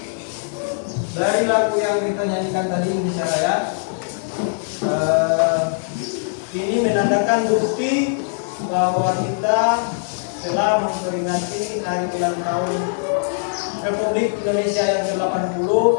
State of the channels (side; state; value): right; silent; digital silence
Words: dari lagu yang kita nyanyikan tadi Indonesia Raya, ini menandakan bukti bahwa kita telah memperingati hari ulang tahun Republik Indonesia yang ke-80